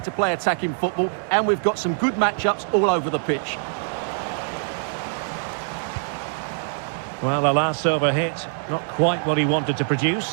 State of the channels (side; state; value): left; silent; digital silence